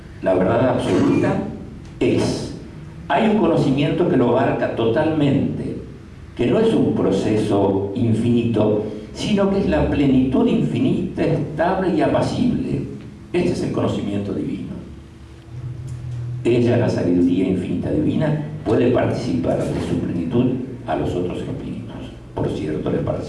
La verdad absoluta es. Hay un conocimiento que lo abarca totalmente, que no es un proceso infinito, sino que es la plenitud infinita, estable y apacible. Este es el conocimiento divino. Ella, la sabiduría infinita divina, puede participar de su plenitud a los otros espíritus. Por cierto, les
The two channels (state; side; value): identical; both; correlation 1.00